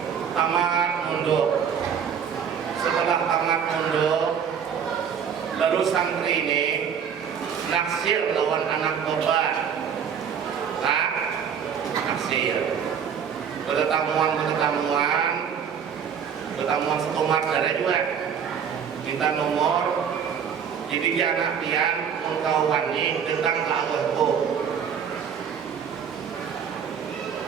tamat mundur. Setelah tamat mundur, lalu santri ini naksir lawan anak korban. Nah, naksir. Pertemuan satu kedua minta nomor jadi anak pian engkau wani datang ke abahku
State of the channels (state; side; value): quieter; left; 7.5 dB